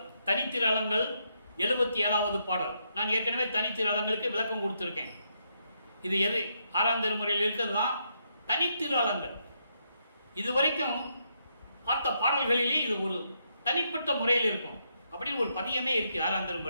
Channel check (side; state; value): both; inverted; correlation -0.78